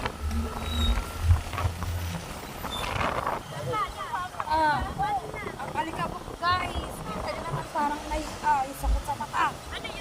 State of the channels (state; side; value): identical; both; correlation 1.00